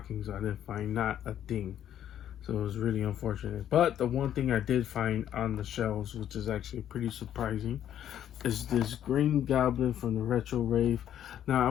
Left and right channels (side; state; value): right; quieter; 10.6 dB